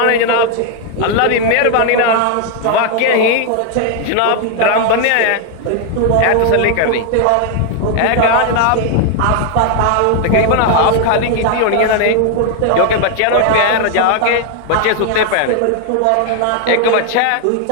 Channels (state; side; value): different; both; correlation 0.00